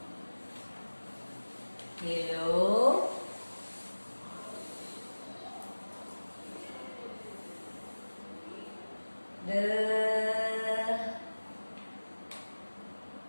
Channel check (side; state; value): both; inverted; correlation -1.00